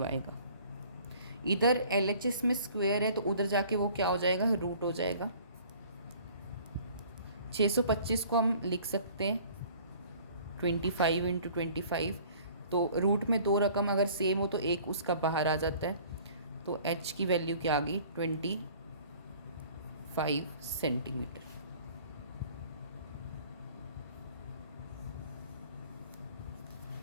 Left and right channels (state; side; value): inverted; both; correlation -0.51